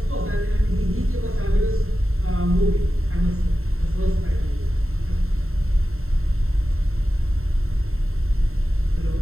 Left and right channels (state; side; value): late; left; 0.62 ms